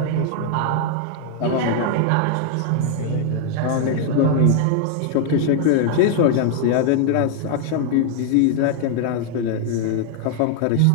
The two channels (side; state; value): both; different; correlation 0.00